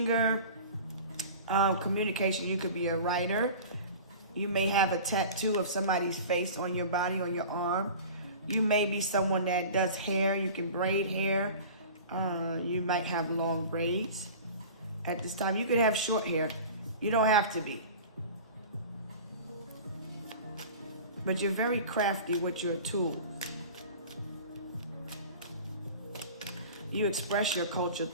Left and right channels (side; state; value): both; inverted; correlation -0.38